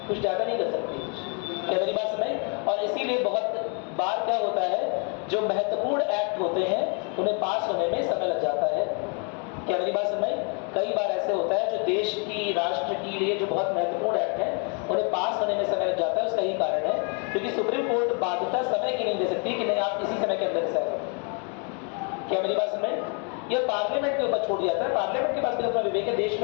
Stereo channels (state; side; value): quieter; right; 37.8 dB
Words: कुछ ज्यादा नहीं कर सकती। क्या मेरी बात सुनाई? और इसीलिए बहुत बार क्या होता है, जो महत्वपूर्ण एक्ट होते हैं उन्हें पास होने में समय लग जाता है। क्या मेरी बात सुनाई? कई बार ऐसे होता है जो देश की, राष्ट्र के लिए जो बहुत महत्वपूर्ण एक्ट हैं उन्हें पास होने में समय लग जाता है। उसका यही कारण है क्योंकि सुप्रीम कोर्ट बाध्यता समय की नहीं दे सकती कि नहीं आप इसी समय के अंदर से आए। क्या मेरी बात सुनाई? यह पार्लियामेंट के ऊपर छोड़ दिया जाता है। पार्लियामेंट के पास भी अपना विवेक है। देश